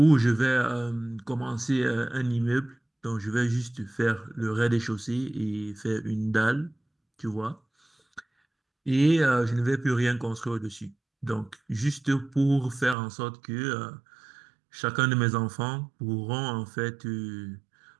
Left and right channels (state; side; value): drops out; left; at 13.0 s